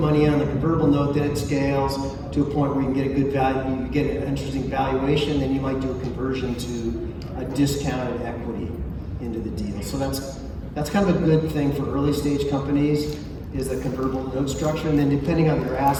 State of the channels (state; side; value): identical; both; correlation 1.00